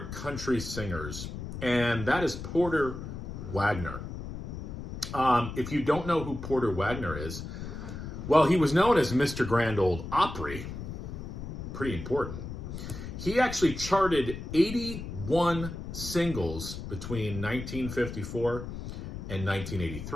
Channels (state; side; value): noise; left; rumble, 8 dB below the sound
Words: country singers, and that is Porter Wagoner. If you don't know who Porter Wagoner is, well, he was known as Mr. Grand Ole Opry. Pretty important. He actually charted 81 singles between 1954 and